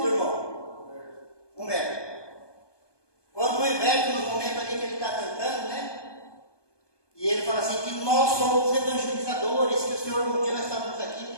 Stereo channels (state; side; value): late; right; 1.2 ms